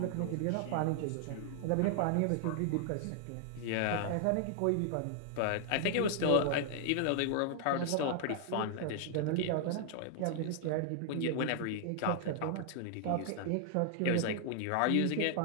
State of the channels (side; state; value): both; different; correlation -0.01